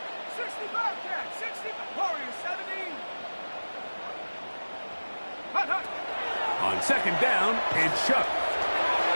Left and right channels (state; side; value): inverted; both; correlation -1.00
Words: 60 Bobcat, 60 Warrior 70. Hunt, hunt. On second down, it's Shuck.